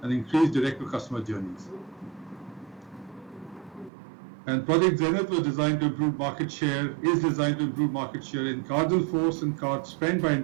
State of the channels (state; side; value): drops out; left; at 3.9 s